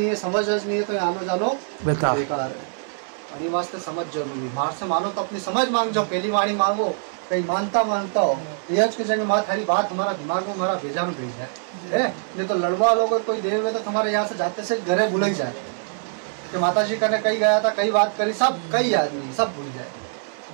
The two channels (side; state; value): left; silent; digital silence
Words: है, समझ नहीं है तो आनो जानो बेकार है। और वास्ते समझ जरूरी, बाहर से मानो तो अपनी समझ मांग जाओ, पहली वाणी मांगो, कहीं मानता हो यज के जगह माँ थारी बात हमारा दिमाग में हमारा भेजा में भेज है। नहीं तो लड़वा लोग कोई देव में तो तुम्हारे यहाँ से जाते से घरे भूल ही जाए कि माता जी करने कहीं गया था, कई बात करी, सब कई आदमी सब भूल